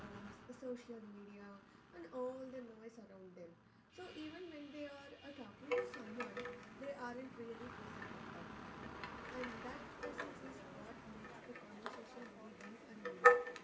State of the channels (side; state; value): both; identical; correlation 1.00